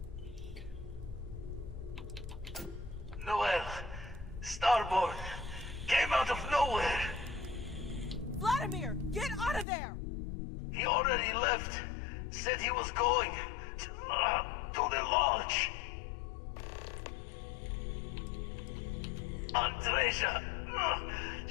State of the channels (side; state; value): right; drops out; at 9.7 s